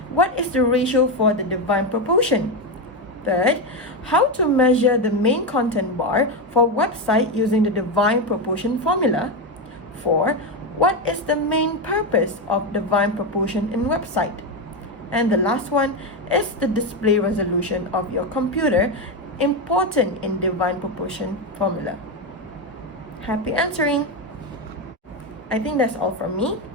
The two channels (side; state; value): both; normal; correlation 0.11